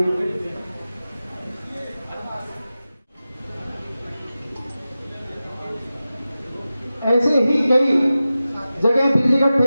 ऐसे ही कई जगह बिजली का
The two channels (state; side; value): inverted; both; correlation -0.94